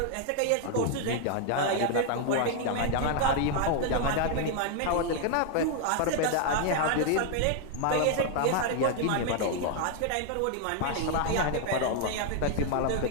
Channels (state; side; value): different; both; correlation 0.00